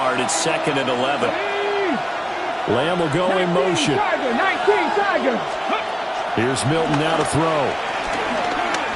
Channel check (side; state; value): both; identical; correlation 1.00